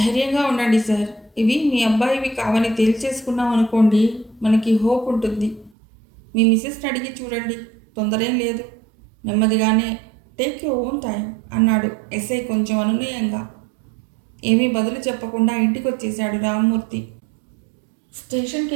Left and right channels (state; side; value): drops out; left; at 5.7 s